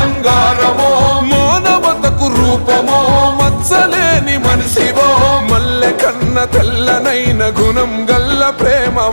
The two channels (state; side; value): inverted; both; correlation -1.00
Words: మానవతకు రూపమో మచ్చలేని మనిషివో మల్లె కన్న తెల్లనైన గుణం గల్ల